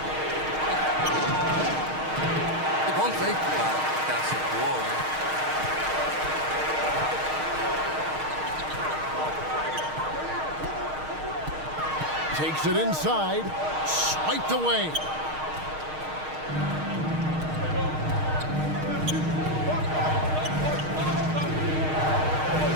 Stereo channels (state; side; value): late; left; 6.4 ms